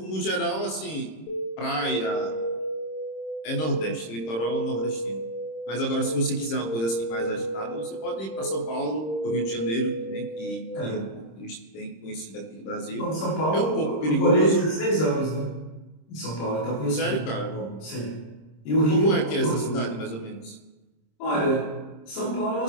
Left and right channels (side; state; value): right; late; 26 ms